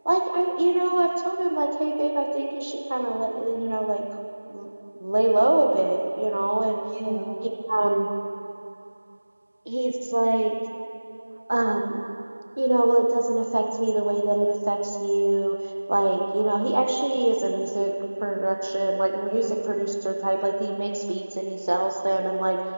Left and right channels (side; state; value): both; inverted; correlation -1.00